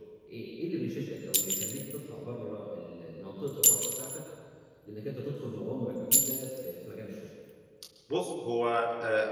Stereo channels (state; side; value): identical; both; correlation 1.00